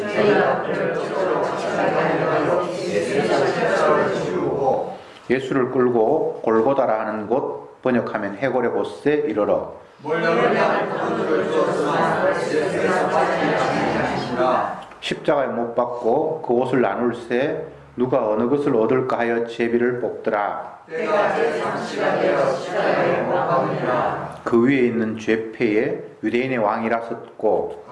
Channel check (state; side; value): identical; both; correlation 1.00